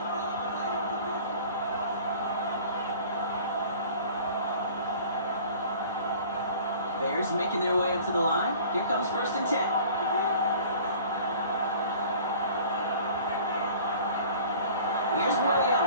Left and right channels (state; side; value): inverted; both; correlation -0.47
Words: Bears making their way up to the line. Here comes 1st and 10. Here's